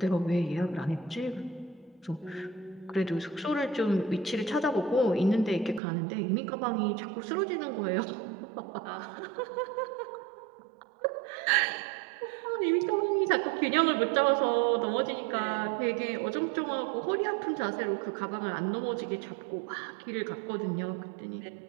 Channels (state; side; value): drops out; left; at 5.8 s